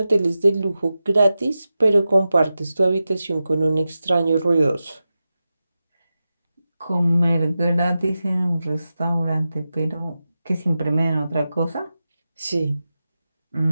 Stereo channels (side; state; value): both; inverted; correlation -0.92